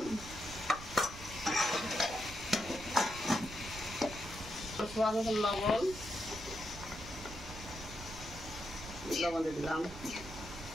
স্বাদ মতন লবণ দিয়ে দিলাম।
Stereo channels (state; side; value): noise; right; rumble, 13 dB below the sound